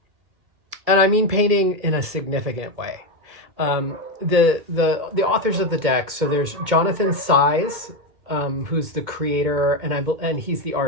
mean painting in a significant way. The authors of the deck, so there's Jonathan Saiz, who's the creator, and he's the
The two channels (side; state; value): left; late; 2.4 ms